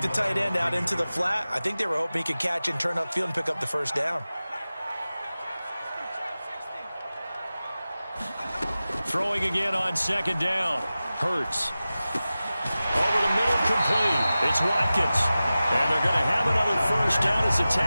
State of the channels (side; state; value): both; inverted; correlation -0.96